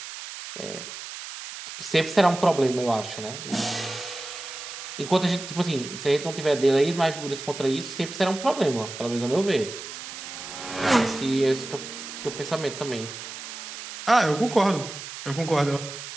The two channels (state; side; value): noise; right; hiss, 10 dB below the sound